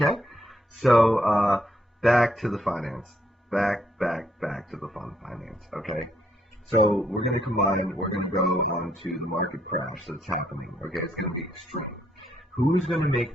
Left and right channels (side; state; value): both; normal; correlation 0.73